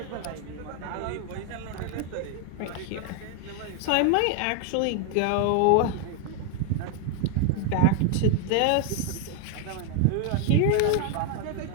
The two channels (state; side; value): different; both; correlation 0.00